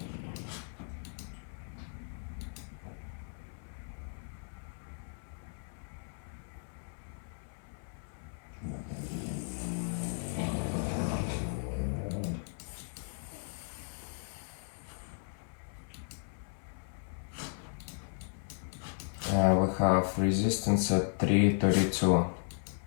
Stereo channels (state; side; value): silent; right; 54 dB below the other